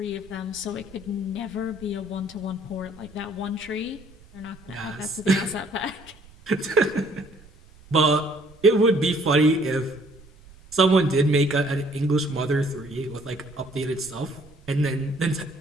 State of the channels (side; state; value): right; noise; rumble, 24 dB below the sound